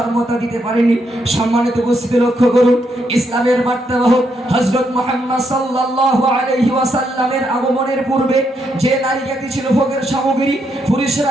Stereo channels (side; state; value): both; normal; correlation 0.78